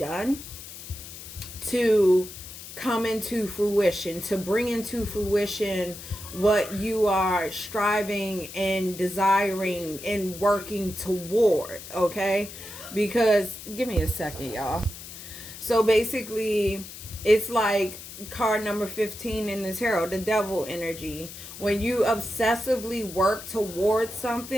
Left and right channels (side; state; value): left; noise; hiss, 13 dB below the sound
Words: to come into fruition, to bring into fruition what you are striving and desiring and working toward. Okay, because give me a second, y'all. So basically, it's like card number 15 in the tarot, the devil energy. When you obsessively work towards